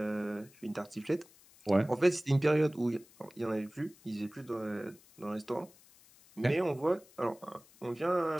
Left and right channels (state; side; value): noise; left; hiss, 26 dB below the sound